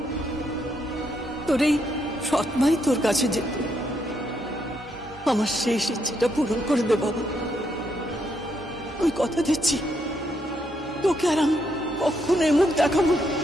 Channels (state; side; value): normal; both; correlation 0.77